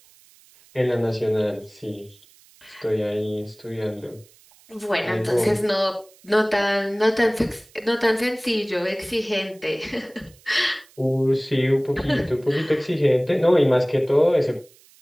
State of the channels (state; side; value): noise; right; hiss, 28 dB below the sound